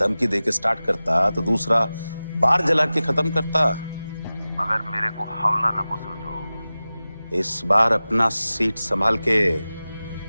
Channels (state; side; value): inverted; both; correlation -0.96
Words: देके स्टार्ट करता तो दूसरा बार जला के खत्म करता। मगर मेरे को हवला न को समझो। इस बार अपना सीट संभाल के।